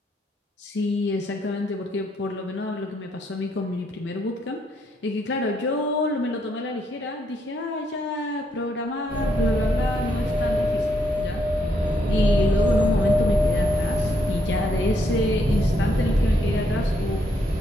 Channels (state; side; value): normal; both; correlation 0.75